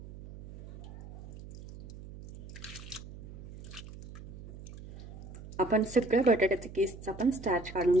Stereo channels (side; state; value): right; noise; hum, 14 dB below the sound